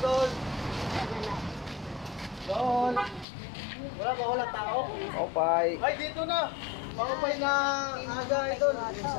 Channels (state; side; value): drops out; right; at 3.2 s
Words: Dol. Wala ba walang tao? Opay. Ay, dito na. Maupay na aga, Idol.